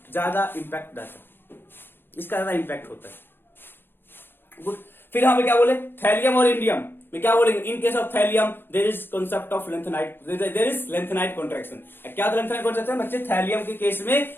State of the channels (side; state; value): right; late; 0.10 ms